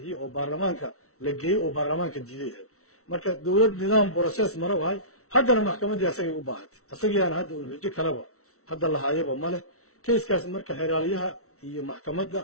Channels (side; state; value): right; late; 0.64 ms